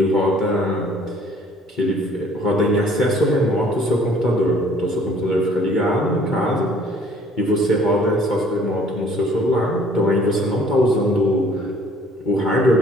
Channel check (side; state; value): both; normal; correlation 0.57